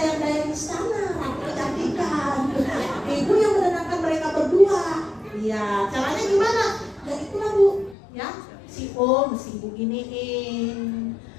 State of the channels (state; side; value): drops out; right; at 8.0 s